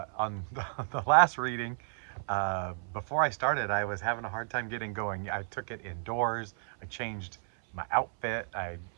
the last reading, before I started, I was having a hard time getting going. I took it indoors. I changed my outfit. I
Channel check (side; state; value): left; silent; 56 dB below the other